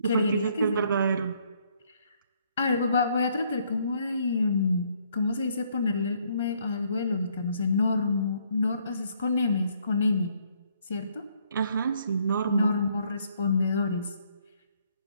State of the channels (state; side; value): inverted; both; correlation -0.67